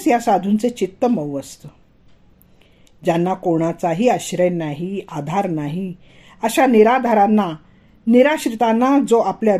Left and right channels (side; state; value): both; identical; correlation 1.00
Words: या साधूंचे चित्त मऊ असतं. ज्यांना कोणाचाही आश्रय नाही, आधार नाही, अशा निराधारांना निराश्रितांना जो आपल्या